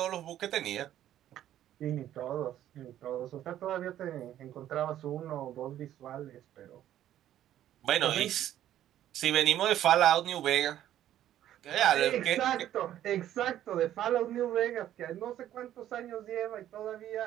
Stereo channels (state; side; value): quieter; left; 12.0 dB